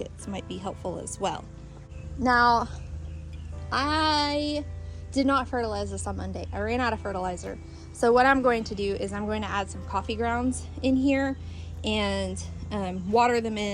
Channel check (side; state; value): both; identical; correlation 1.00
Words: might be helpful as well. Now, I did not fertilize this on Monday. I ran out of fertilizer. So what I'm going to do is I'm going to add some coffee grounds in here and water them